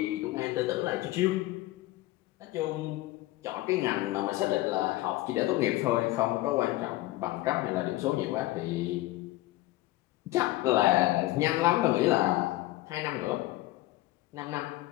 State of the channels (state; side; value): quieter; right; 17.6 dB